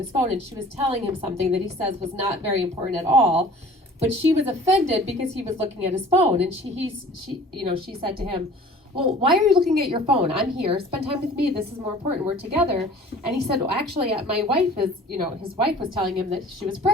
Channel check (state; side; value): normal; both; correlation 0.47